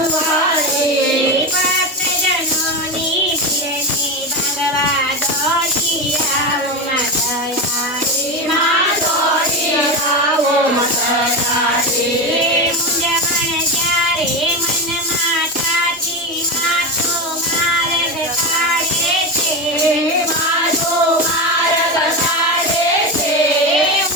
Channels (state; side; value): normal; both; correlation 0.18